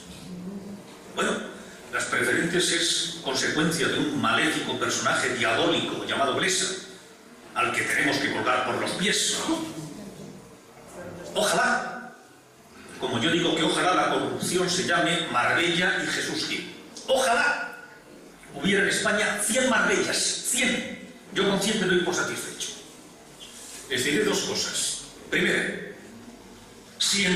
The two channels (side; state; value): both; identical; correlation 1.00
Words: Bueno, las preferentes es consecuencia de un maléfico personaje diabólico llamado Blesa, al que tenemos que colgar por los pies. Ojalá, como yo digo que ojalá la corrupción se llame Marbella y Jesús Gil. Ojalá hubiera en España 100 Marbellas, 100. Yo con 100 me doy por satisfecho. Les diré dos cosas. Primero, si en